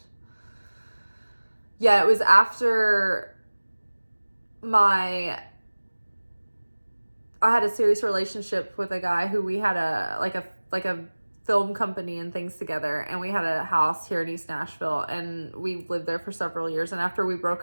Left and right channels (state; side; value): inverted; both; correlation -1.00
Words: Yeah, it was after I had a serious relationship with a guy who we had a film company and things together, and we had a house here in East Nashville, and we lived there for several years. And after we